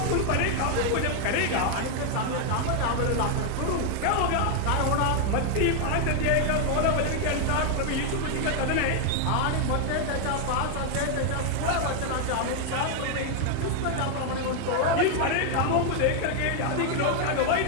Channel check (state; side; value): different; both; correlation 0.00